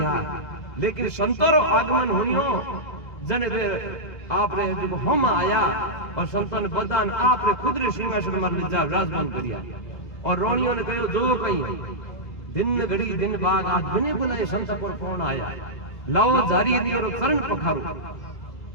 लेकिन संतों आगमन होनियो जन आप रे जो हम आया, और संतों ने बदान आप रे खुद रे सिंहासन पर ले जा राजमान करिया। और रोनियों ने कहो जो कही दिन घड़ी दिन बाद आज बिने बुलाए संत पर कौन आया, लाओ जारी लियो रो चरण पखारो।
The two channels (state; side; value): late; right; 2.0 ms